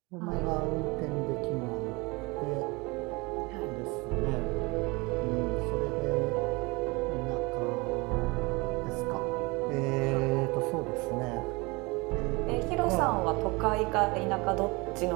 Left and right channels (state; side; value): quieter; left; 25.7 dB